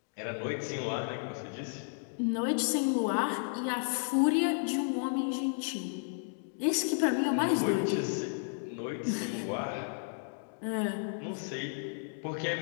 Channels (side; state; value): right; silent; digital silence